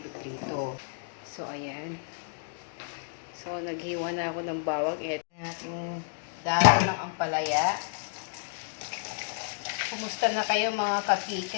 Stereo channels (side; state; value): right; silent; digital silence